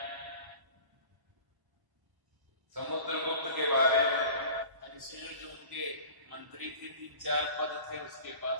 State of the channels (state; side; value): late; left; 1.0 ms